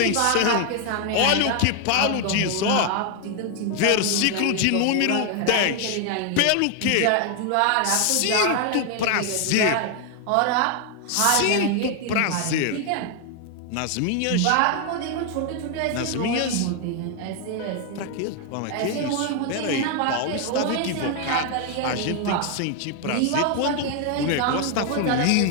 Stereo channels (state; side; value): different; both; correlation 0.01